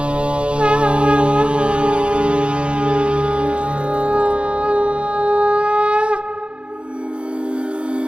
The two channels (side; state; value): left; late; 0.057 ms